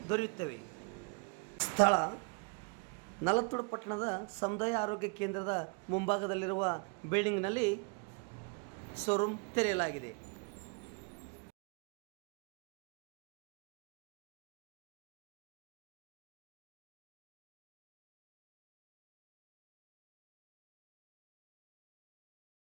ದೊರೆಯುತ್ತವೆ. ಸ್ಥಳ ನಾಲತವಾಡ ಪಟ್ಟಣದ ಸಮುದಾಯ ಆರೋಗ್ಯ ಕೇಂದ್ರದ ಮುಂಭಾಗದಲ್ಲಿರುವ ಬಿಲ್ಡಿಂಗ್ನಲ್ಲಿ ಶೋರೂಮ್ ತೆರೆಯಲಾಗಿದೆ.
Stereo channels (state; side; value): quieter; left; 33.7 dB